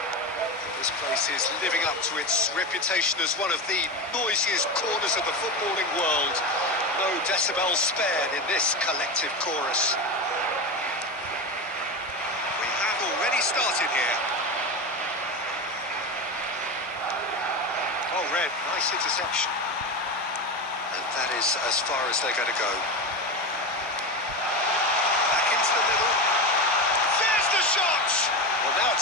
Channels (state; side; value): normal; both; correlation 0.20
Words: This place is living up to its reputation as one of the noisiest corners of the footballing world. No decibels spared in this collective chorus. We have already started here. Oh, Red, nice interception. And that is as far as they're going to go. Back into the middle. There's the shot! Well, now